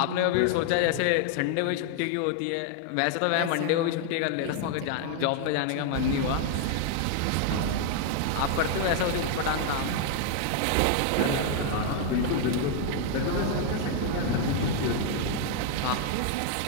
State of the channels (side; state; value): both; different; correlation 0.00